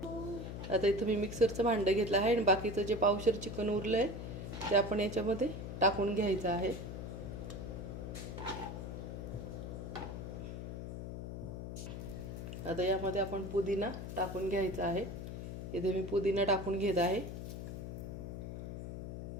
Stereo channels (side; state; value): left; noise; hum, 7 dB below the sound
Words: आता इथं मी मिक्सरचं भांडं घेतलं आहे आणि बाकीचं जे पावशर चिकन उरलं आहे ते आपण याच्यामध्ये टाकून घ्यायचं आहे. आता यामध्ये आपण पुदिना टाकून घ्यायचा आहे. इथे मी पुदिना टाकून घेत आहे.